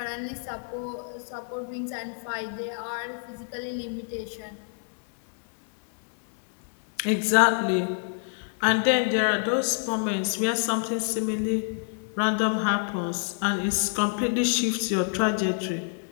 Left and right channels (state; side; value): silent; right; 60 dB below the other